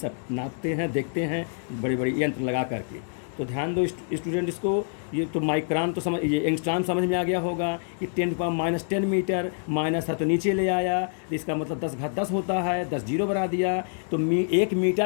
नापते हैं, देखते हैं, बड़े बड़े यंत्र लगा करके। तो ध्यान दो स्टूडेंट, इसको ये तो माइक्रोन तो समझ, ये एंगस्ट्रॉम समझ में आ गया होगा कि 10⁻⁻10 मीटर, माइनस था तो नीचे ले आया, तो इसका मतलब 10⁻10 होता है, 10 जीरो बना दिया, तो 1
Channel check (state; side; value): silent; right; digital silence